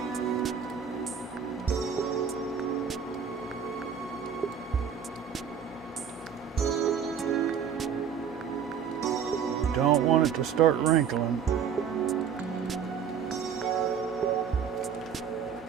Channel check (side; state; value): left; quieter; 7.5 dB